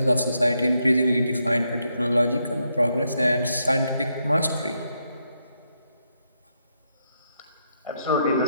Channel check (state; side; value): inverted; both; correlation -0.80